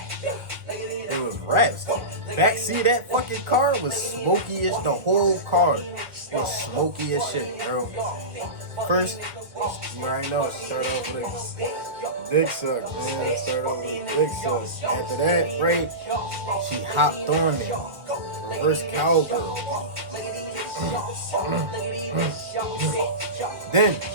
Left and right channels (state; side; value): late; left; 1.1 ms